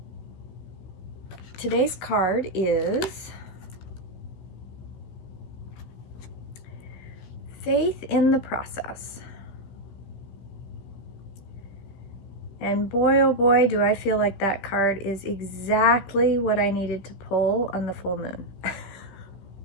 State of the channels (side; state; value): right; late; 16 ms